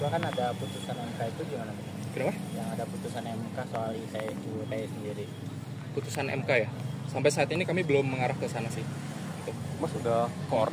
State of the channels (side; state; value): both; identical; correlation 1.00